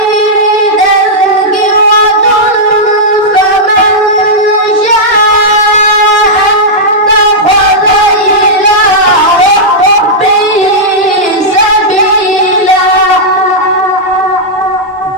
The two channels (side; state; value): both; normal; correlation -0.08